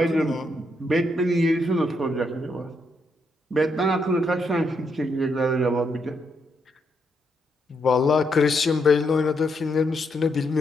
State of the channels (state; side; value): normal; both; correlation 0.78